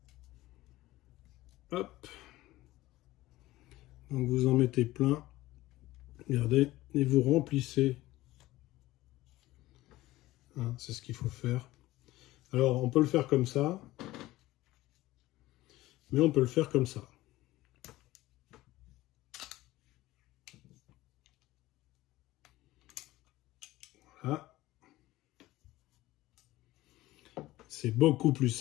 Hop. Donc vous en mettez plein. Regardez. Et vous remplissez. Hein, c'est ce qu'il faut faire. Alors, on peut le faire comme ça. Mais on peut le faire comme ça. Voilà. C'est beaucoup plus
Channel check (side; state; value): right; quieter; 17.2 dB